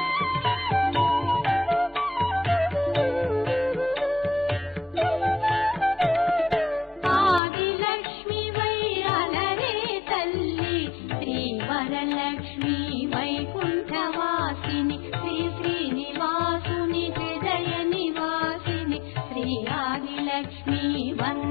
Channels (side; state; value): right; drops out; at 7.4 s